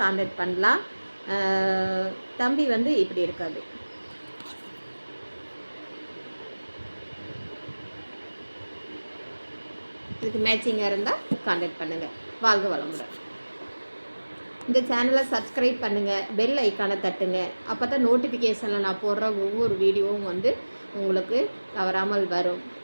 கான்டாக்ட் பண்ணலாம். தம்பி வந்து இப்படி இருக்காது. இதுக்கு மேட்சிங்காக இருந்தால் கான்டாக்ட் பண்ணுங்கள். வாழ்க வளமுடன். இந்த சேனலை சப்ஸ்கிரைப் பண்ணுங்கள், பெல் ஐக்கானை தட்டுங்க. அப்போ தான் நோட்டிஃபிகேஷனில் நான் போடுற ஒவ்வொரு வீடியோவும் வந்து உங்களுக்கு தவறாமல் வரும்.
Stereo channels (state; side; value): inverted; both; correlation -1.00